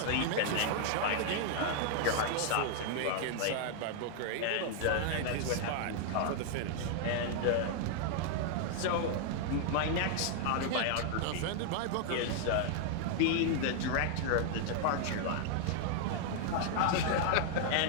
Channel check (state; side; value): different; both; correlation 0.00